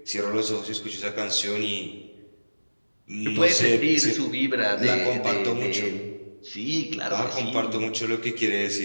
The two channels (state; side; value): inverted; both; correlation -1.00